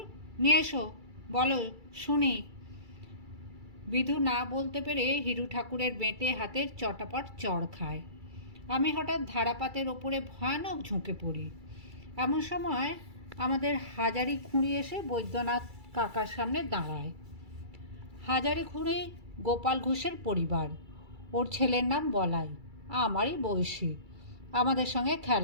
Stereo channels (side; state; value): left; late; 2.3 ms